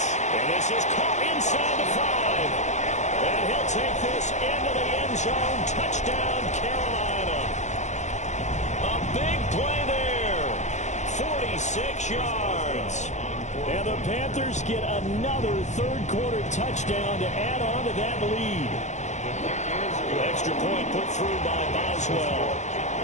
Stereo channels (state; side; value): late; right; 0.34 ms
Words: And this is caught inside the 5. And he'll take this into the end zone. Touchdown, Carolina. A big play there. 46 yards. And the Panthers get another third-quarter touchdown to add on to that lead. Extra point put through by Boswell.